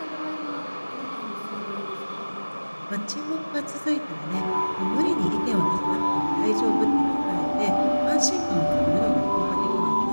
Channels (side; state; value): both; inverted; correlation -1.00